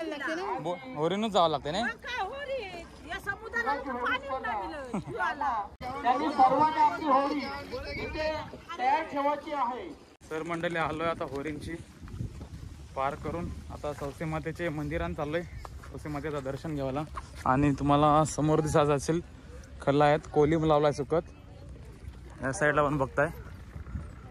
होरीनच जावं लागते ना? तर मंडळी, आलोय आता होरींची पार करून, आता सौसे मातेचे मंदिरात चाललोय सौसे मातेचं दर्शन घ्यायला। आणि तुम्हाला समोर दिसत असेल खल्ला आहेत, कोलिम लावलाय सुकत, या साईडला पण बघताय।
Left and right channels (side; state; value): both; identical; correlation 1.00